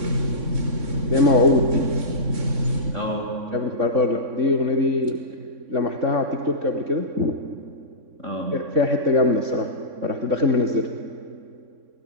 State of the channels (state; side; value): late; left; 3.6 ms